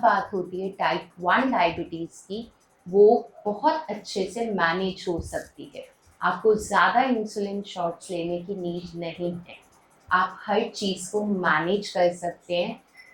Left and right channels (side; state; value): both; identical; correlation 1.00